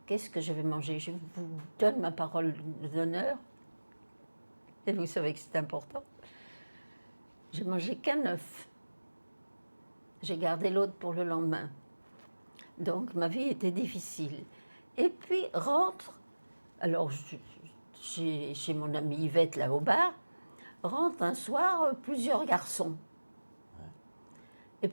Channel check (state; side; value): inverted; both; correlation -1.00